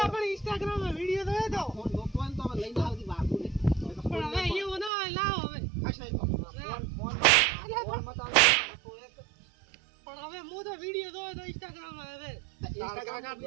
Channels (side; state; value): left; drops out; at 4.9 s